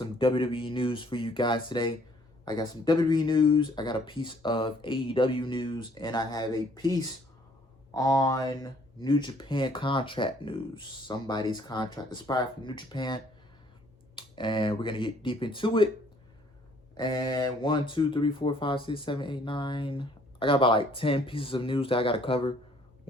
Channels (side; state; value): both; normal; correlation 0.61